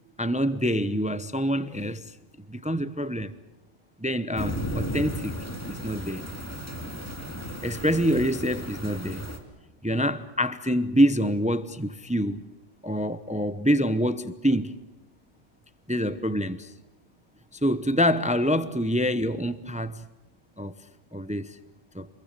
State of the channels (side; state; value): both; normal; correlation 0.60